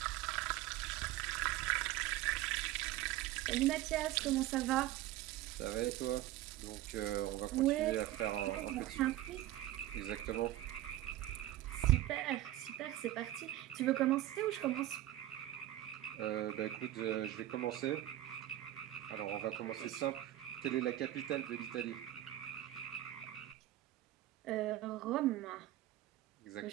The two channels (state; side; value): quieter; left; 14.3 dB